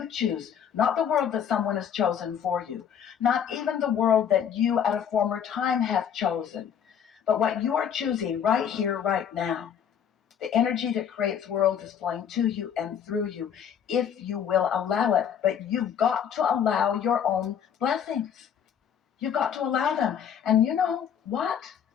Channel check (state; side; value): quieter; right; 8.4 dB